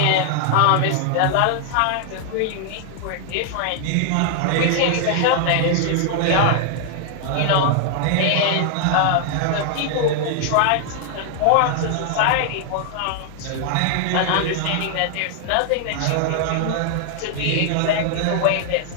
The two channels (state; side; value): different; both; correlation 0.00